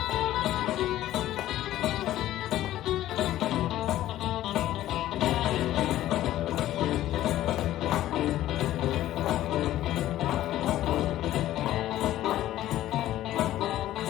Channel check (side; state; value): right; quieter; 13.9 dB